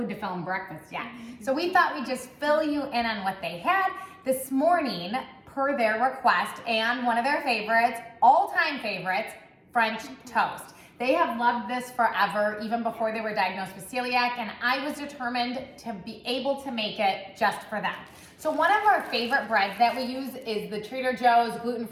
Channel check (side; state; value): both; identical; correlation 1.00